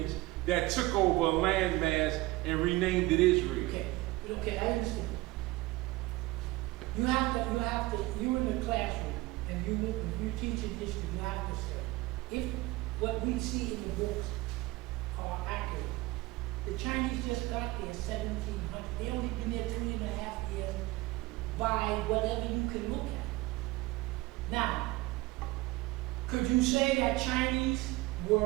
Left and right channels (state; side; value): quieter; left; 20.2 dB